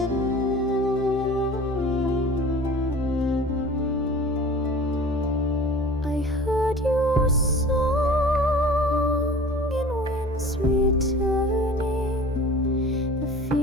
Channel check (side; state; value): both; normal; correlation 0.43